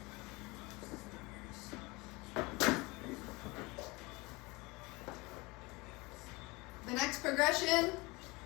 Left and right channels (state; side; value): quieter; right; 24.5 dB